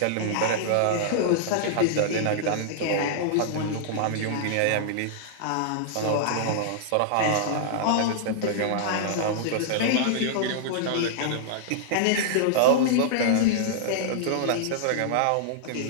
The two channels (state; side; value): different; both; correlation -0.01